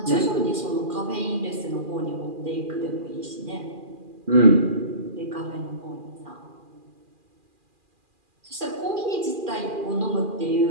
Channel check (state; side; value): late; left; 2.4 ms